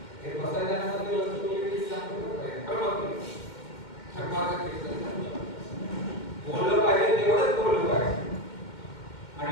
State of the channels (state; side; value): late; right; 2.1 ms